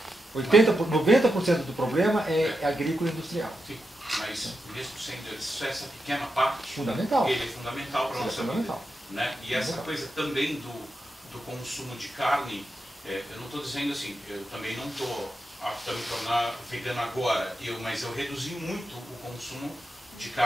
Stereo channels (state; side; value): normal; both; correlation 0.87